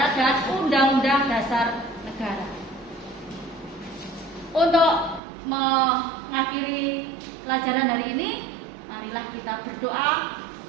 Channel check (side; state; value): left; drops out; at 5.2 s